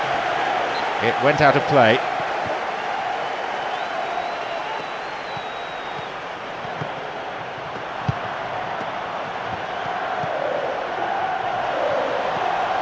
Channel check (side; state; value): both; identical; correlation 1.00